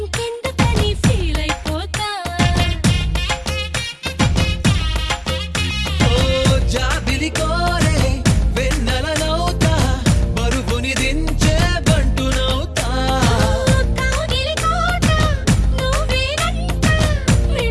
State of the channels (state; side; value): identical; both; correlation 1.00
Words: ఫీల్ అయిపోతా ఓ జాబిలి కోరే వెన్నెలనవుతా బరువుని దించే బంటునవుతా కాగిలి కోట నువ్వేనంట